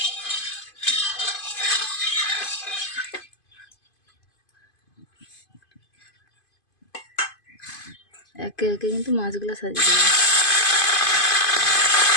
একে একে কিন্তু মাছগুলো সাজিয়ে দেবো।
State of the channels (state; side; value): late; right; 2.5 ms